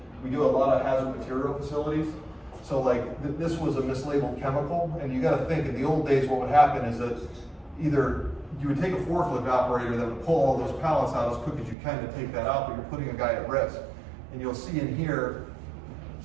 We do a lot of hazard material facilities. So like this was a mislabeled chemical, and you gotta think, in the old days what would happen is that either you would take a forklift operator that would pull all those pallets out as quick as you can to take that out, but you're putting a guy at risk. And you'll see in here,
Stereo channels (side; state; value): left; drops out; at 11.8 s